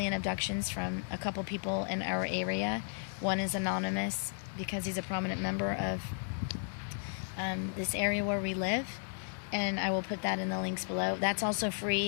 abductions from a couple people in our area. One is anonymous because he's a prominent member of this area where we live. And I will put that in the links below. That's also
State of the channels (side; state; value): right; silent; 55 dB below the other